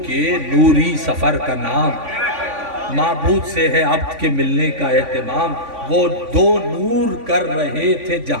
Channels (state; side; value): late; left; 3.5 ms